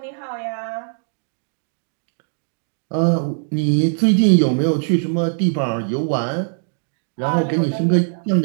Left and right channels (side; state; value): left; silent; digital silence